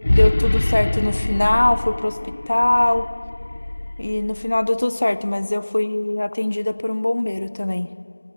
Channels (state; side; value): inverted; both; correlation -1.00